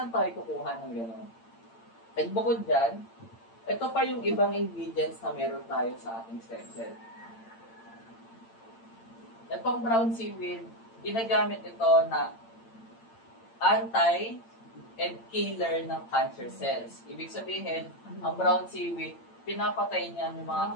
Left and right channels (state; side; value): late; right; 8.8 ms